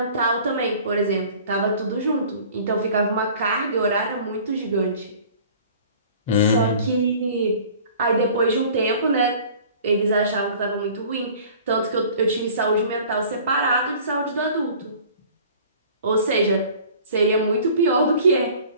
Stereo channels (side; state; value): both; inverted; correlation -0.47